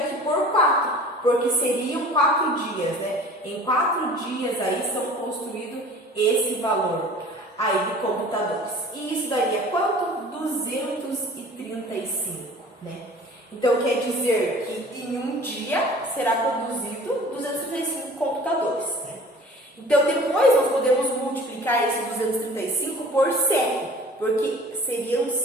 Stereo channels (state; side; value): normal; both; correlation 0.45